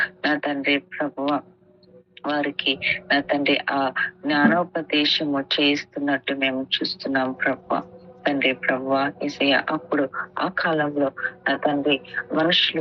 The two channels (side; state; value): both; identical; correlation 1.00